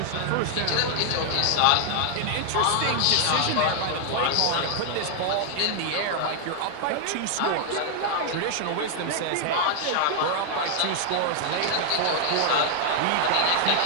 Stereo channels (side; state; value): both; different; correlation 0.00